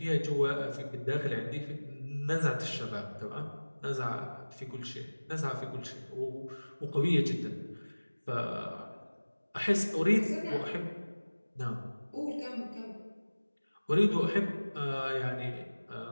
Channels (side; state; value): both; inverted; correlation -1.00